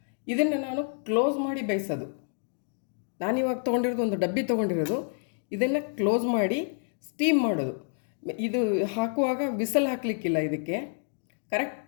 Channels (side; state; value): right; silent; 59 dB below the other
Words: ಇದನ್ನು ನಾನು ಕ್ಲೋಸ್ ಮಾಡಿ ಬೇಯಿಸೋದು. ನಾನಿವಾಗ ತೊಗೊಂಡಿರೋದು ಒಂದು ಡಬ್ಬಿ ತೊಗೊಂಡಿರೋದು, ಇದನ್ನು ಕ್ಲೋಸ್ ಮಾಡಿ ಸ್ಟೀಮ್ ಮಾಡೋದು. ಇದು ಹಾಕುವಾಗ ವಿಸಲ್ ಹಾಕಲಿಕ್ಕಿಲ್ಲ, ಇದಕ್ಕೆ